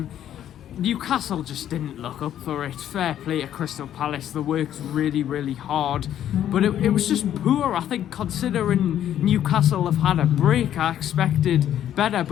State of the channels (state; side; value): quieter; right; 10.9 dB